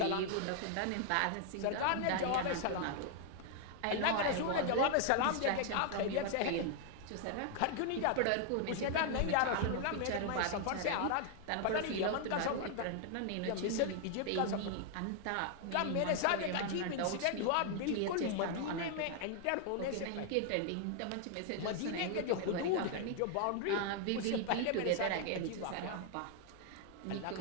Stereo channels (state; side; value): different; both; correlation 0.00